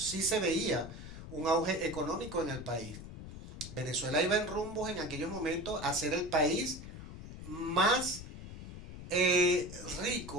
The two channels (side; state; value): left; noise; rumble, 12 dB below the sound